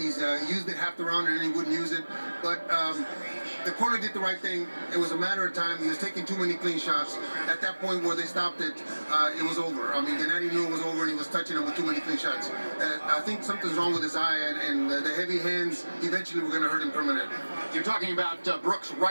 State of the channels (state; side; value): inverted; both; correlation -1.00